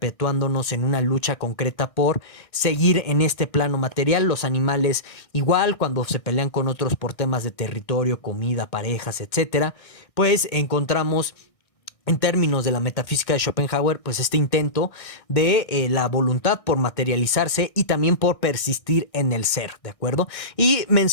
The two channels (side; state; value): right; late; 1.6 ms